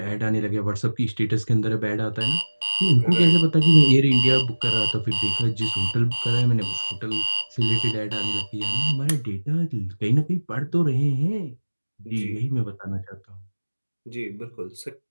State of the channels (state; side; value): inverted; both; correlation -1.00